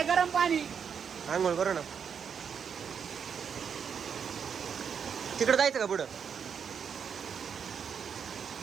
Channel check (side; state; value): left; quieter; 7.1 dB